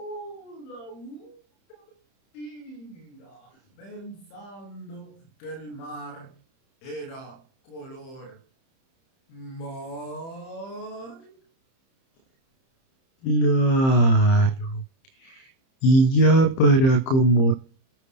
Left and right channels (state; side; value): late; right; 30 ms